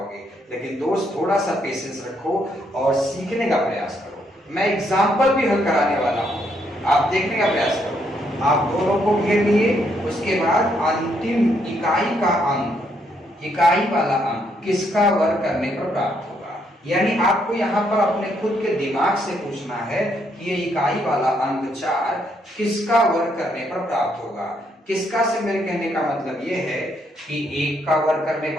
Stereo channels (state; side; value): normal; both; correlation 0.74